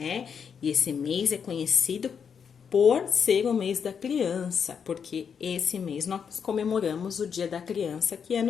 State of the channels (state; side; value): quieter; right; 6.9 dB